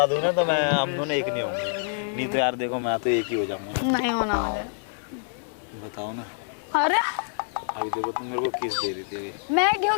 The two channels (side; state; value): right; silent; 61 dB below the other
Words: दूँ ना तो मैं, हम दोनों एक नहीं होंगे। नहीं तो यार देखो मैं तो एक ही हो जाऊंगा। नहीं होना मुझे। बताओ ना। अरे अभी देखो तुम मेरे को किस दे रही थी अभी। मैं क्यों